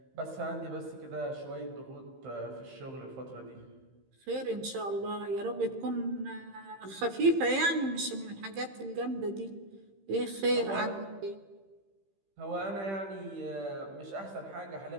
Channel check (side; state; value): left; late; 15 ms